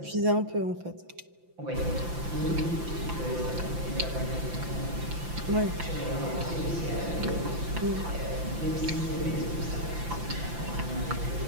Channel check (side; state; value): left; late; 5.9 ms